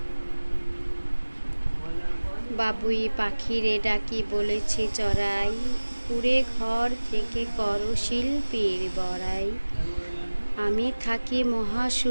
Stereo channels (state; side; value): inverted; both; correlation -1.00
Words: বাবুই পাখিরে ডাকি বলেছি চড়াই, কুড়ে ঘর থেকে করো শিল্পীর বড়াই। আমি থাকি